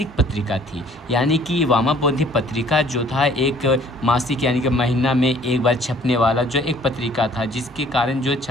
पत्रिका थी। यानी कि वामाबोधिनी पत्रिका जो था एक मासिक, यानी कि महीना में एक बार छपने वाला जो एक पत्रिका था, जिसके कारण जो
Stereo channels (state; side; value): normal; both; correlation 0.56